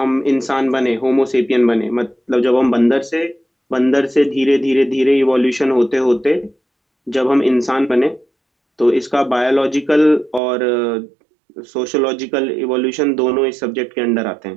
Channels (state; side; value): drops out; left; at 10.4 s